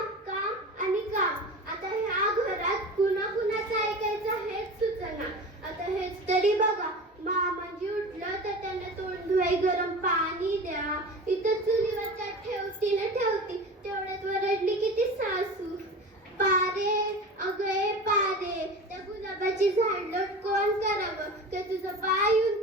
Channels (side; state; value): both; normal; correlation 0.33